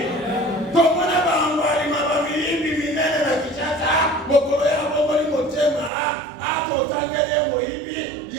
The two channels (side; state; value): left; drops out; at 5.9 s